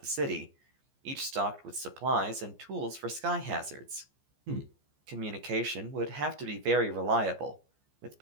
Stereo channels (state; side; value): late; left; 14 ms